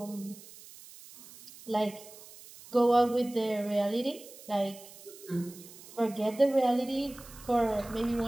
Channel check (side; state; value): right; noise; hiss, 19 dB below the sound